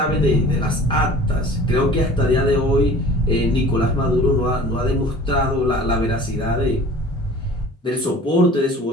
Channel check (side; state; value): both; normal; correlation 0.45